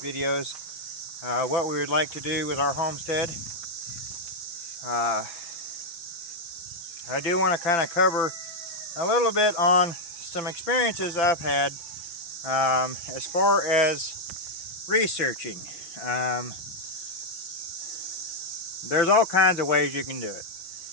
What we would like to do with our homestead. I do want to kind of cover a little bit on some experiences I've had as far as researching. There's all kinds of ways you can do it.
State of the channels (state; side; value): late; right; 5.9 ms